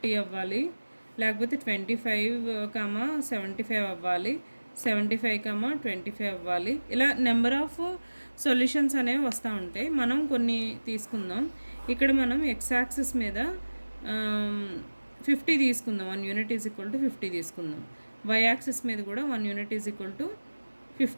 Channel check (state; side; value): inverted; both; correlation -1.00